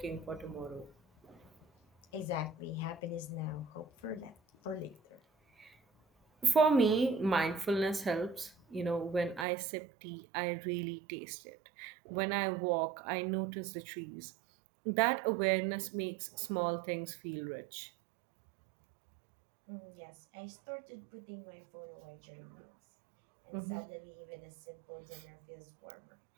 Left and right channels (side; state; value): left; drops out; at 9.5 s